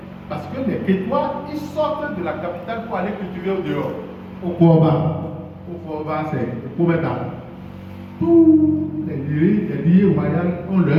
parce que les Kétois, ils sortent de la capitale pour aller cultiver au dehors. Au Kouaba, c'est au Koumeta. Tous les liés royaux ont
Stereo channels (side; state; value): both; identical; correlation 1.00